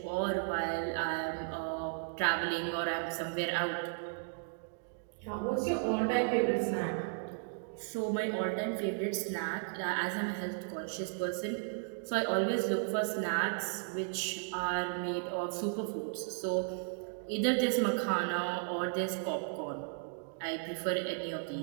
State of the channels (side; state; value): left; silent; digital silence